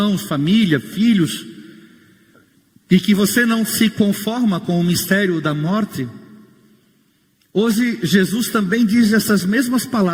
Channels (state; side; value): identical; both; correlation 1.00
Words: família, filhos. E que você não se conforma com o mistério da morte. Hoje Jesus também diz essas mesmas